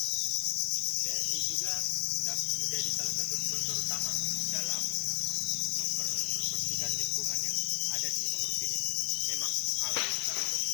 BRI juga menjadi salah satu sponsor utama dalam membersihkan lingkungan yang ada di mangrove ini. Memang alam sangat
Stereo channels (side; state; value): right; quieter; 31.4 dB